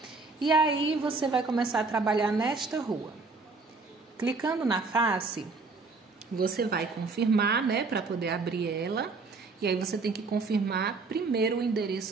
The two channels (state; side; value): quieter; left; 4.0 dB